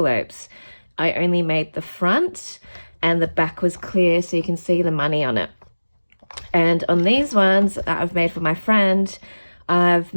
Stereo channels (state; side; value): inverted; both; correlation -1.00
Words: I only made the front and the back was clear so you can see the money on it. And on these ones that I've made for my friend, I've